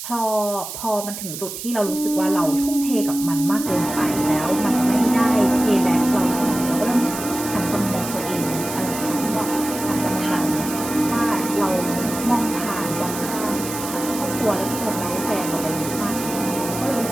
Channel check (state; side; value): noise; right; hiss, 8 dB below the sound